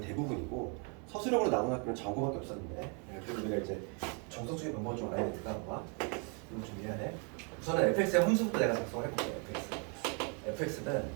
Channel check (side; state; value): left; quieter; 36.6 dB